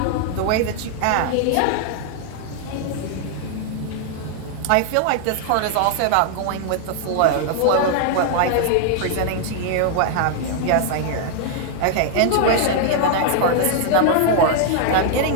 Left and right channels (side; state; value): both; different; correlation 0.00